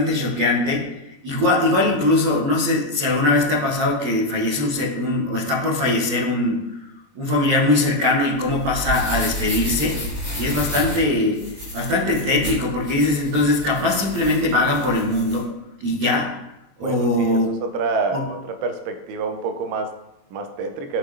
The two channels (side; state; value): left; late; 21 ms